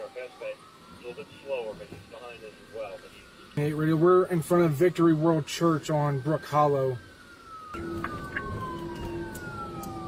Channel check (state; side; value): identical; both; correlation 1.00